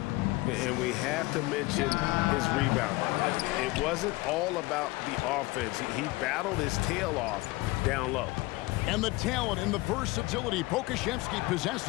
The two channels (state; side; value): quieter; right; 21.6 dB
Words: we have to mention his rebound. It wasn't all about the offense. He battled his tail off down low. And the talent and the versatility Pokusevski